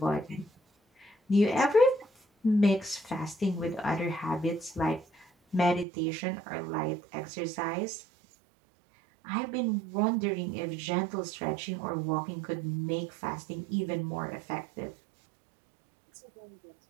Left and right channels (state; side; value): drops out; left; at 5.9 s